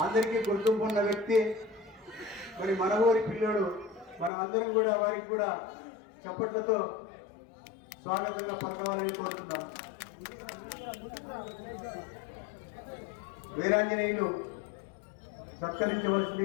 అందరికీ గుర్తింపు ఉన్న వ్యక్తి. మరి మన ఊరి పిల్లడు. మనం అందరం కూడా వారికి కూడా చప్పట్లతో స్వాగతంగా పలకవాలని కోరుతున్నాం. వీరాంజనేయులు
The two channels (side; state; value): right; drops out; at 4.3 s